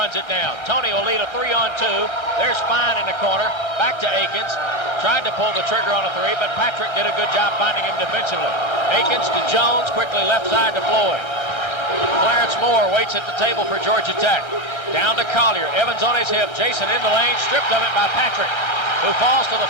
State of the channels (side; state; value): right; late; 1.6 ms